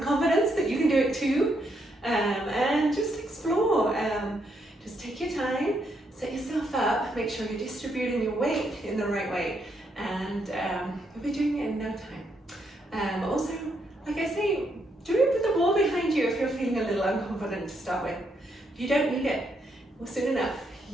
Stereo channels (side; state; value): both; normal; correlation 0.77